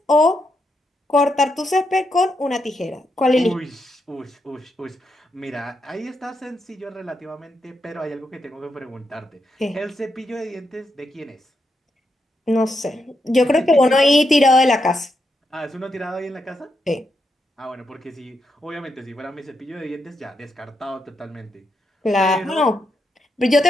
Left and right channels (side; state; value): both; normal; correlation 0.82